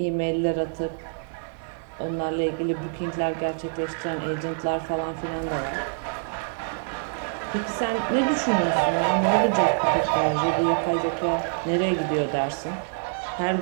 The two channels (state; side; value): silent; left; digital silence